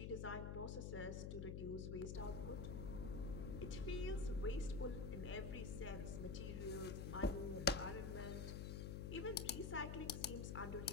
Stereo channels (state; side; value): noise; left; hum, 2 dB below the sound